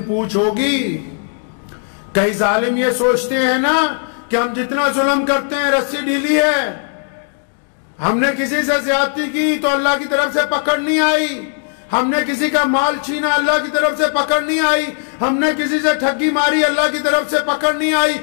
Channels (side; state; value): right; silent; 59 dB below the other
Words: पूछ होगी। कई जालिम ये सोचते हैं ना कि हम जितना जुल्म करते हैं रस्सी ढीली है, हमने किसी से ज्यादती की तो अल्लाह की तरफ से पकड़ नहीं आई, हमने किसी का माल छीना अल्लाह की तरफ से पकड़ नहीं आई, हमने किसी से ठगी मारी अल्लाह की तरफ से पकड़ नहीं आई,